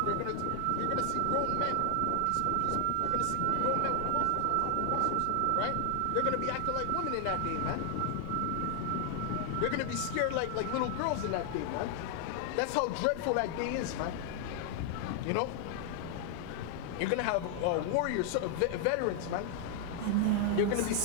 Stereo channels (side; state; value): both; different; correlation 0.00